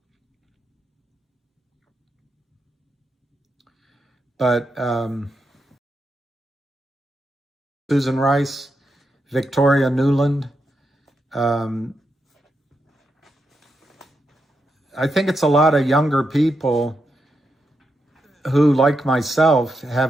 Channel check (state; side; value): normal; both; correlation 0.84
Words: but Susan Rice, Victoria Nuland, I think it's a lot of younger people who, like myself,